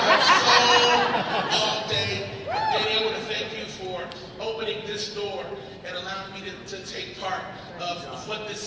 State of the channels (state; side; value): identical; both; correlation 1.00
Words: soul all day. Danny, I want to thank you for opening this door and allowing me to take part of what